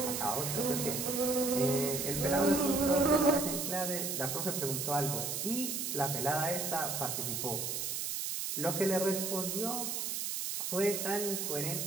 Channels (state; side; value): noise; right; hiss, 2 dB below the sound